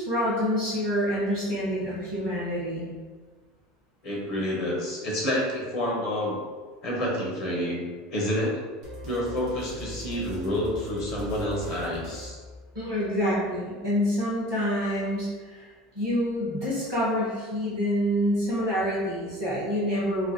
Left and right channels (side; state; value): both; normal; correlation 0.40